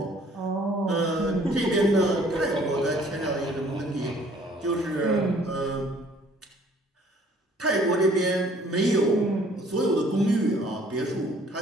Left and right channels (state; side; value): normal; both; correlation 0.57